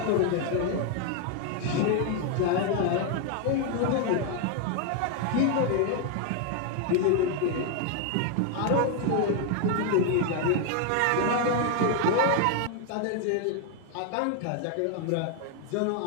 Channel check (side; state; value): both; different; correlation 0.01